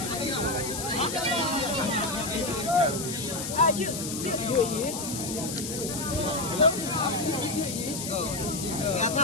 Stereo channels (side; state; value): left; noise; hiss, 6 dB below the sound